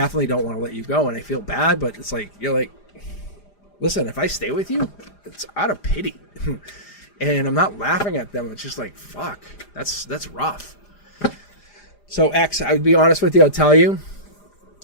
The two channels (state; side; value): late; right; 4.9 ms